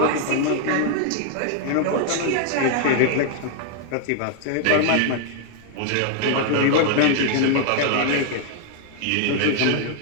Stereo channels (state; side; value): different; both; correlation 0.00